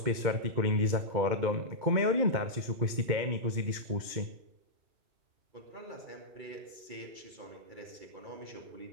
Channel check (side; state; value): left; late; 2.2 ms